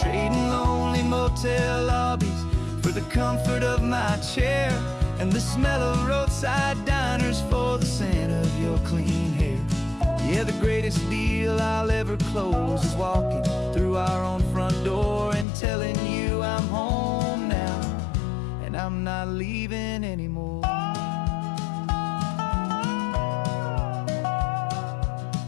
trading lonely motel lobbies for the comfort of my chair, and the smell of roadside diners for the scent of your clean hair. Yeah, the greatest deal I'll ever close is walking through our own front door and telling you I'm home now, and I'm not leaving anymore.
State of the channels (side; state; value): right; drops out; at 15.5 s